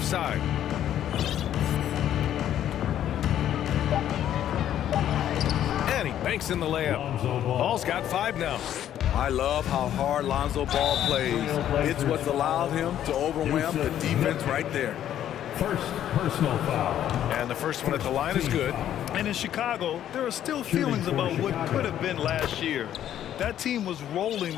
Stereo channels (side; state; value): right; quieter; 11.0 dB